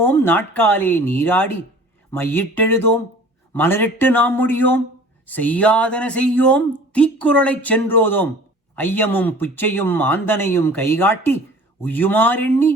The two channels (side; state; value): both; normal; correlation 0.46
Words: நாட்காலே நீராடி, மையிட்டெழுதோம் மலரிட்டு நாம் முடியோம், செய்யாதன செய்யோம் தீக்குறளைச் சென்றோதோம், ஐயமும் புச்சையும் ஆந்தனையும் கைகாட்டி உய்யுமாறெண்ணி